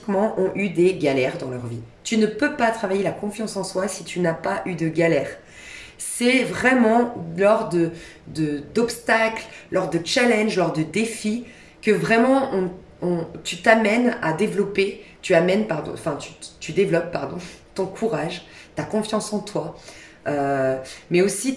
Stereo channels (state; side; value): identical; both; correlation 1.00